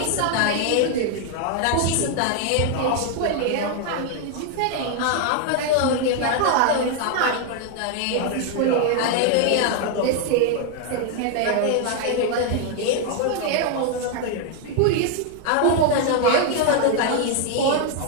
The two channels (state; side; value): different; both; correlation 0.00